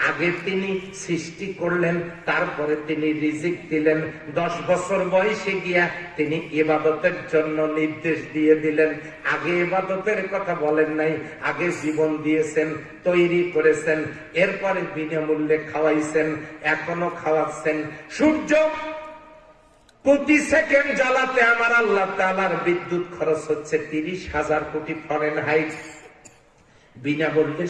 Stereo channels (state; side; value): identical; both; correlation 1.00